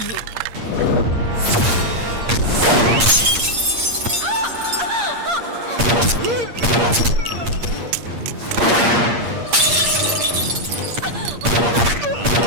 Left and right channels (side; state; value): left; late; 8.6 ms